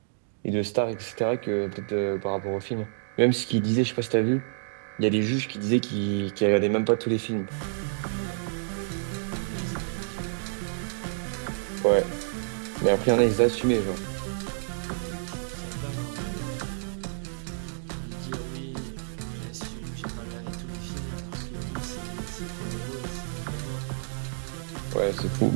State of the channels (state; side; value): silent; left; digital silence